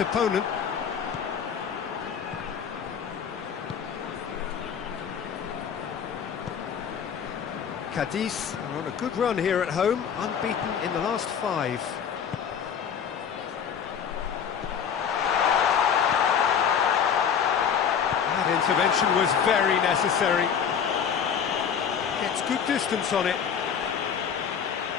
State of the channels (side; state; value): right; quieter; 7.5 dB